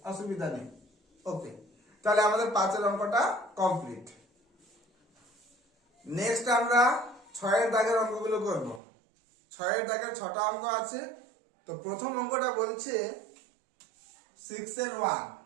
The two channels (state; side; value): drops out; left; at 8.8 s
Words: অসুবিধা নেই। ওকে, তাহলে আমাদের 5-এর অঙ্কটা কমপ্লিট। নেক্সট আমরা 6-এর দাগের অঙ্কগুলো করব। 6-এর দাগের 6টা অঙ্ক আছে। তো প্রথম অঙ্কটা বলছে 6-এর 1